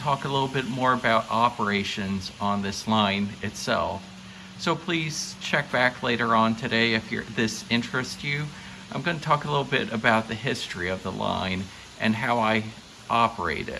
a little bit more about operations on this line itself. So please check back later on today if this interests you. I'm going to talk a little bit about the history of the line and how I operate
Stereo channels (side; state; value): both; identical; correlation 1.00